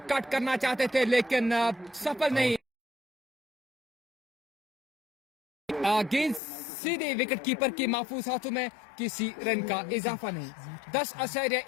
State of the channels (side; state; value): right; drops out; at 6.4 s